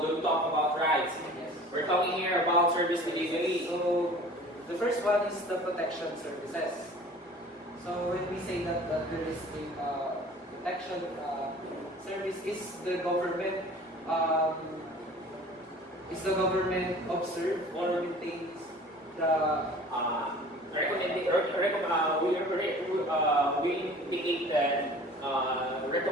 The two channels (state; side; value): normal; both; correlation 0.45